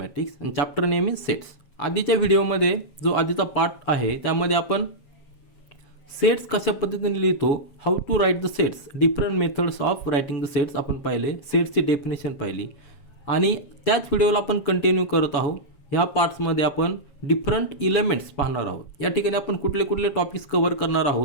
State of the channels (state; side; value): late; right; 7.2 ms